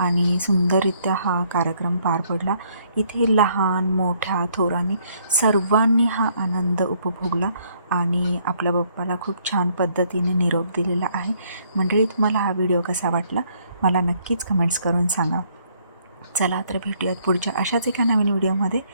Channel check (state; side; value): inverted; both; correlation -0.67